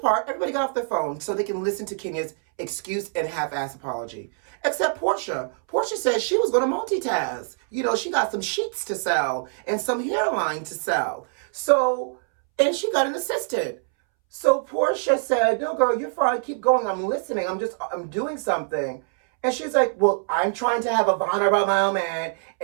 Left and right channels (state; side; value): silent; left; 62 dB below the other